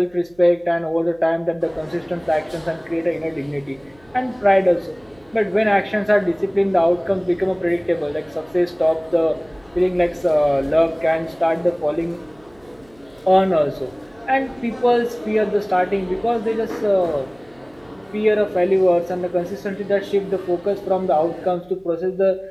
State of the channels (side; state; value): right; noise; hum, 30 dB below the sound